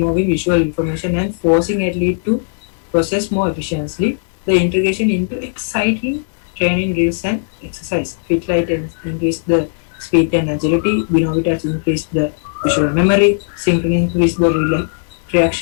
visual information and forcing athlete to process more efficiently. The integration into exciting training drills and exercise. Fit light increase the speed and agility. Binovitas increase the visual memory. Synchrony increase the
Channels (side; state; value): right; silent; digital silence